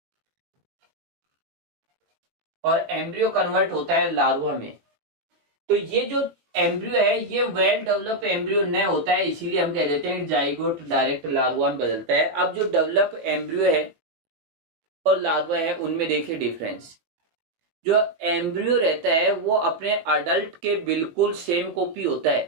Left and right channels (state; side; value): late; left; 18 ms